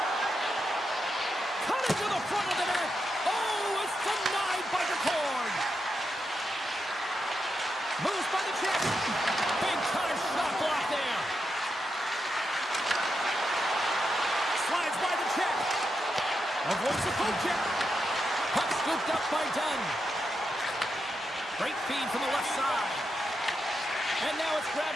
Cutting to the front of the net. Oh, it's denied by the cord. Moves by the check. Big time shot block there. Slides by the check. Avoids the poke check. Puck scooped up by Dunn. Great feed from the left side. And now it's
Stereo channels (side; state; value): both; normal; correlation 0.85